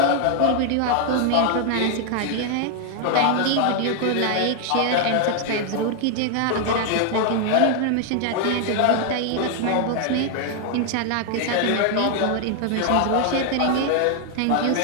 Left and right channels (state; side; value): different; both; correlation 0.00